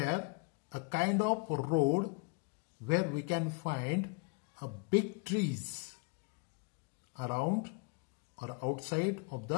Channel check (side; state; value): right; quieter; 30.5 dB